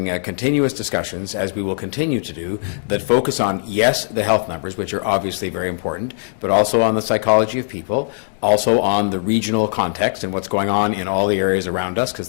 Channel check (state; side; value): silent; right; digital silence